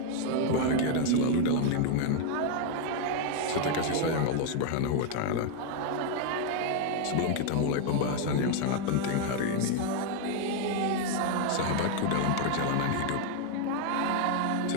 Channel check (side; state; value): both; different; correlation 0.01